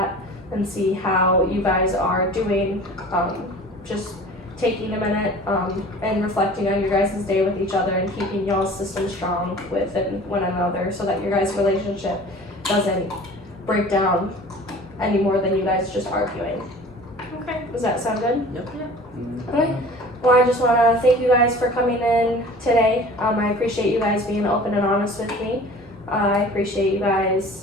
and see how you guys are doing. Just taking a minute and reflecting on your guys' day with each other and keeping y'all's system strong within one another so that your guys' relationship doesn't break down any more than you guys just arguing. Okay. Does that sound good? Yep. Okay. Well, I just want to thank you guys for coming in today. I appreciate you guys being open and honest with me. I appreciate you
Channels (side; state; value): both; normal; correlation 0.43